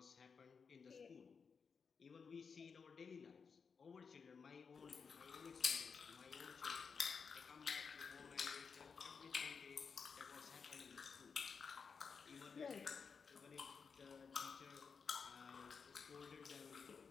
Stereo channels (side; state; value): right; quieter; 5.7 dB